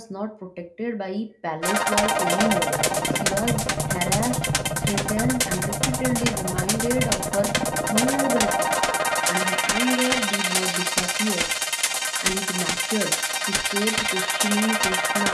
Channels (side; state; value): both; identical; correlation 1.00